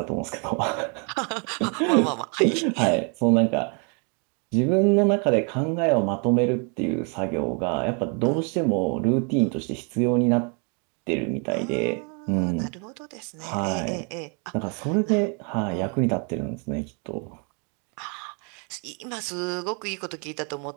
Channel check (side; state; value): left; quieter; 36.8 dB